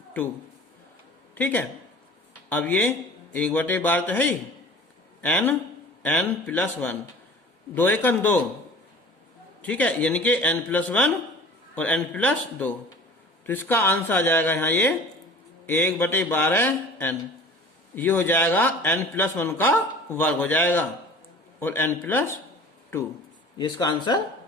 2, ठीक है। अब ये 1 बटे 12 तो है ही, n प्लस 1, 2 1 2, ठीक है, यानी कि n प्लस 1 और n प्लस 2, तो इसका आंसर आ जाएगा यहाँ ये 1 बटे 12 n, ये हो जाएगा n प्लस 1 का वर्ग हो जाएगा और n प्लस 2, ये इसका आंसर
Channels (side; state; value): both; normal; correlation 0.43